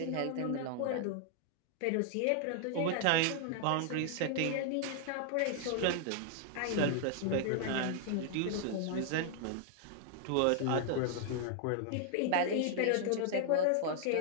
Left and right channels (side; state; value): both; different; correlation 0.00